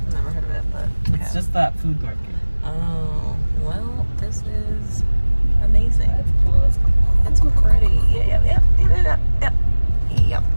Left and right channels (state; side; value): inverted; both; correlation -1.00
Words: Never heard of it, but okay. It's just that food market. Oh, well, this is amazing. That's cool. That's cool. It's pretty. Yep.